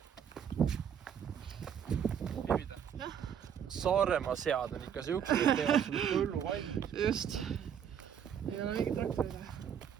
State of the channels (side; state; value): left; quieter; 8.4 dB